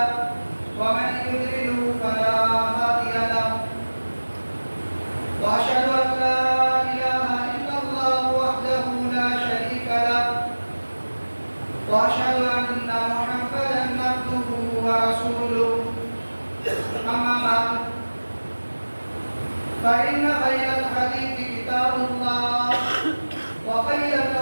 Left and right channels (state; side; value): inverted; both; correlation -1.00